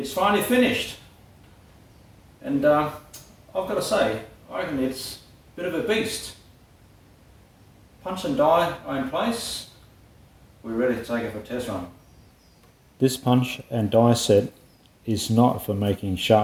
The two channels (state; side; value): identical; both; correlation 1.00